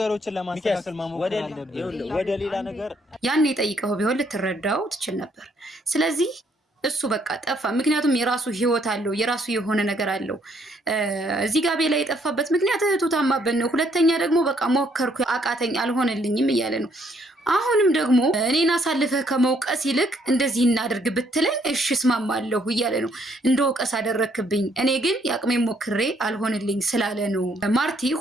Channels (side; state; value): both; normal; correlation 0.69